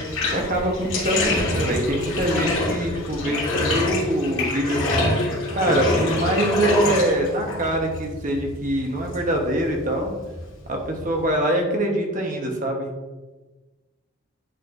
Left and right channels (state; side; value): normal; both; correlation 0.37